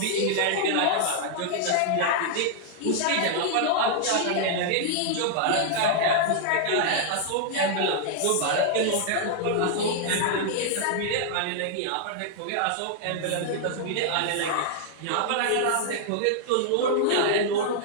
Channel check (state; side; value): different; both; correlation -0.01